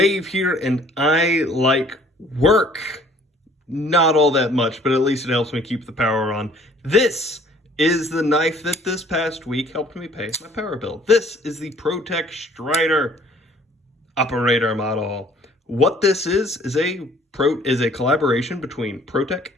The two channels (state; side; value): normal; both; correlation 0.57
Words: here, and I like work. Not all that much, but at least it helps me keep the power on. This is the knife that this past week helped me pay my power bill. This is the ProTech Strider operator model. What this is a collaboration between ProTech